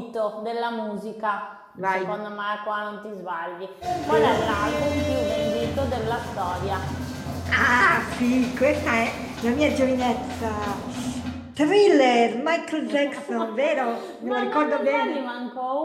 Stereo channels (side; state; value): both; identical; correlation 1.00